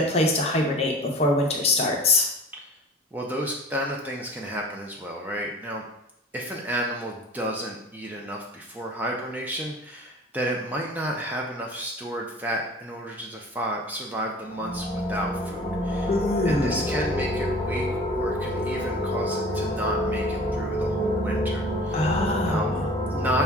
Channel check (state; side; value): normal; both; correlation 0.43